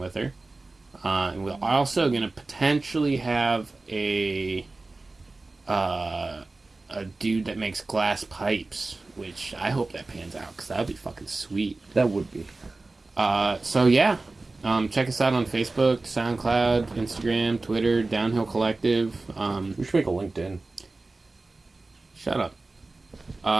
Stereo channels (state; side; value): quieter; left; 3.3 dB